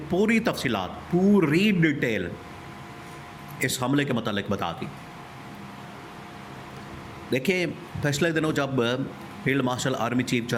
पूरी तफसीलात, पूरी डिटेल इस हमले के मतलब बता दी। देखिए, पिछले दिनों जब field marshal army chief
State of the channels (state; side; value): identical; both; correlation 1.00